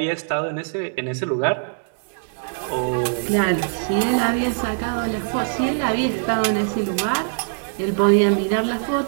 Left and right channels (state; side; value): silent; left; digital silence